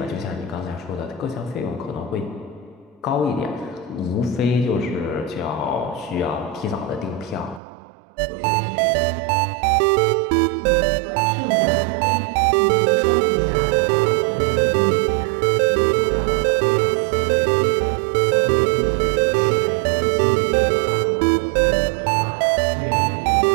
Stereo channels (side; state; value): left; drops out; at 7.6 s